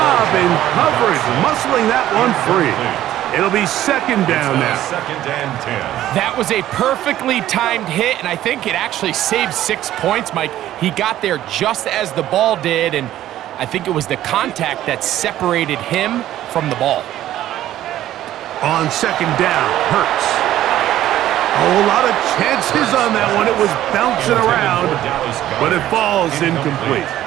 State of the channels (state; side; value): quieter; left; 13.2 dB